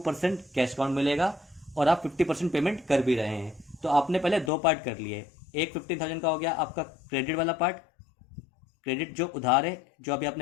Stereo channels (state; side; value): drops out; right; at 4.5 s